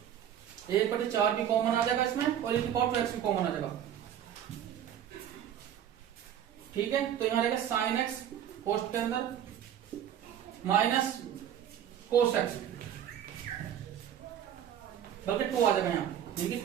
1/4 भी कॉमन आ जाएगा इसमें और एक पावर 2x भी कॉमन आ जाएगा। ठीक है, तो यहां रहेगा sin x कोष्ठ के अंदर माइनस cos x, बल्कि 2 आ जाएगा यहाँ, यानी कि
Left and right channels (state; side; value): quieter; left; 10.0 dB